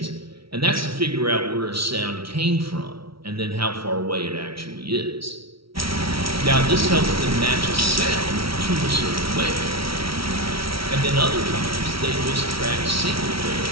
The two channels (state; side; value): late; left; 0.75 ms